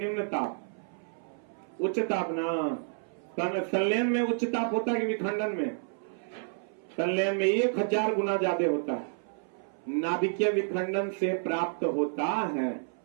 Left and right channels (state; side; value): silent; left; 58 dB below the other